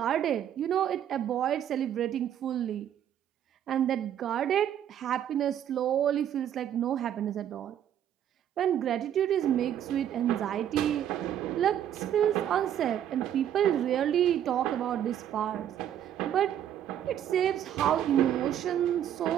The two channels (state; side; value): quieter; left; 10.3 dB